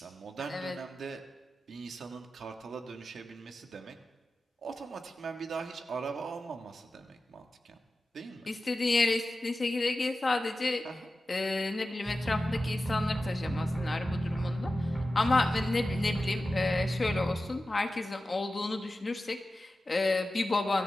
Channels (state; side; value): normal; both; correlation 0.94